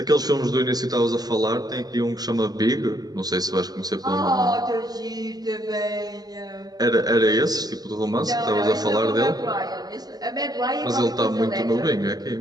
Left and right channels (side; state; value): left; late; 0.19 ms